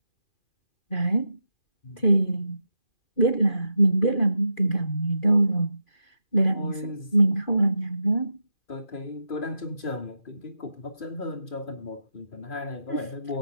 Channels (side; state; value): right; late; 2.4 ms